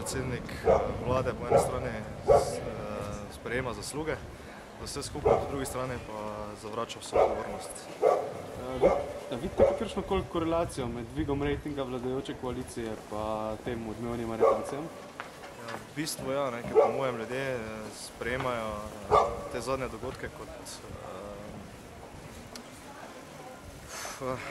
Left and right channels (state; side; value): identical; both; correlation 1.00